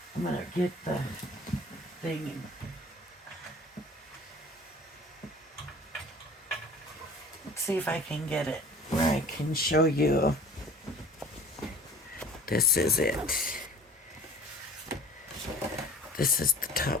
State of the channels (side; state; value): both; normal; correlation 0.45